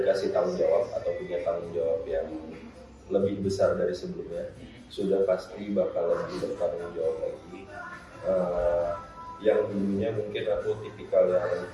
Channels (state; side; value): identical; both; correlation 1.00